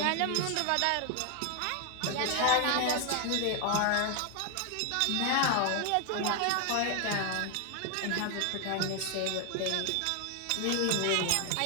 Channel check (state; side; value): different; both; correlation 0.00